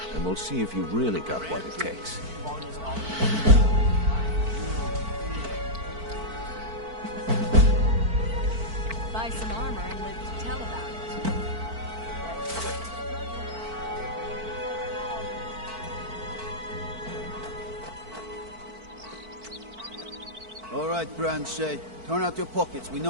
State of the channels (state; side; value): late; left; 4.5 ms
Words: and we'll see if you've really got what it takes. Buy some armor and live to tell about it. All right, Branche. Turn out your pockets. We